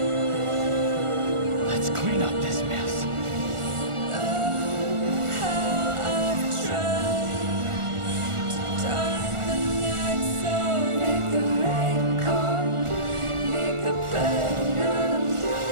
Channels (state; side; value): late; left; 1.4 ms